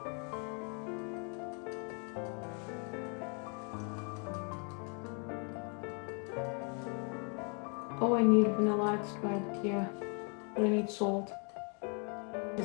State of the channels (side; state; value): right; quieter; 37.9 dB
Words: Oh, I need vanilla extract here. But I need salt.